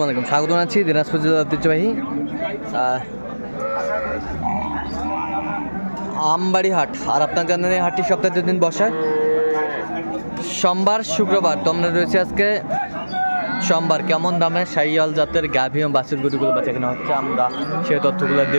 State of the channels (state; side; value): inverted; both; correlation -1.00